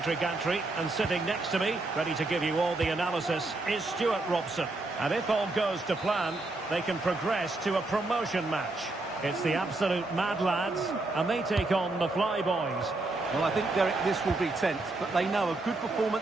gantry, and sitting next to me, ready to give you all the analysis, is Stuart Robson. And if all goes to plan, they can progress to a promotion match. It's the absolute Mad Lads, and they take on the Flyboys. Well, I think, Derek, this will be tense, but they know a good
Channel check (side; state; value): left; quieter; 3.0 dB